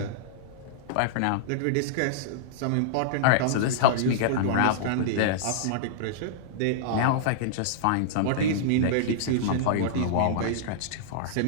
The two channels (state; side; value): different; both; correlation -0.02